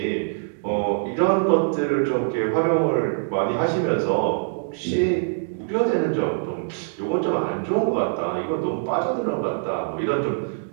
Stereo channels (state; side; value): silent; left; digital silence